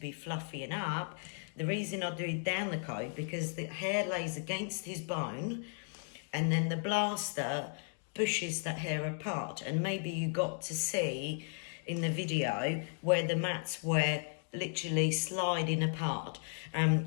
fluffy and up. The reason I do it down the coat, because the hair lays against his bone, and then the blaster pushes that hair apart. And maybe you got to see in the video where the mats were literally sliding apart,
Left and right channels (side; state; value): right; silent; 54 dB below the other